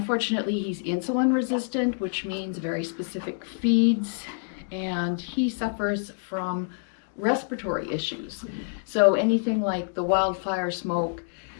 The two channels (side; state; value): right; silent; digital silence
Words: he's insulin resistant, which means very specific feeds, and he suffers from respiratory issues. So anything like the wildfire smoke,